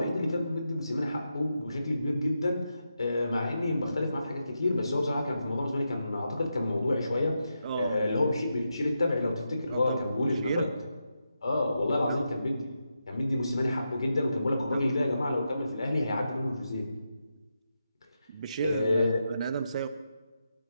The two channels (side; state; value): both; inverted; correlation -0.86